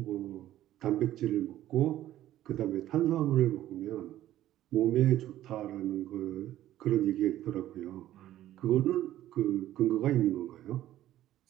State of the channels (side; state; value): left; quieter; 13.4 dB